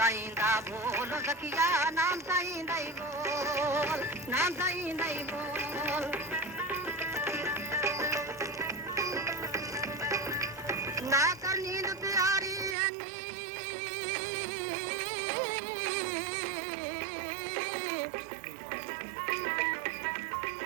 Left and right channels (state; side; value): drops out; left; at 12.8 s